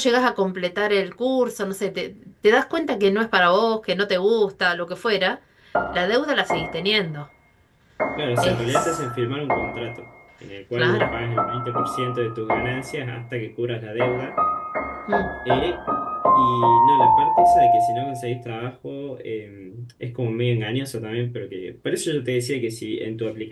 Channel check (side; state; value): both; identical; correlation 1.00